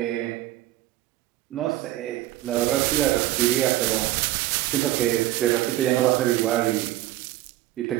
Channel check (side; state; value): left; quieter; 15.3 dB